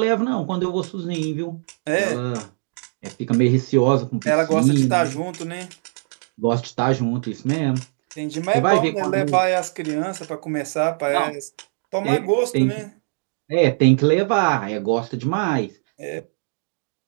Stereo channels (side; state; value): left; silent; digital silence